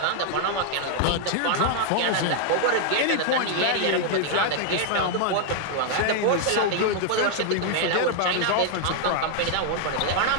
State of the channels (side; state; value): both; different; correlation 0.00